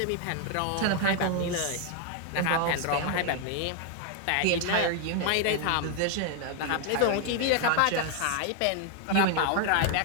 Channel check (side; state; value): both; different; correlation 0.00